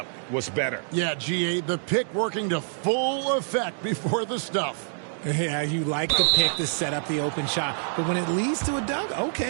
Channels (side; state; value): left; silent; digital silence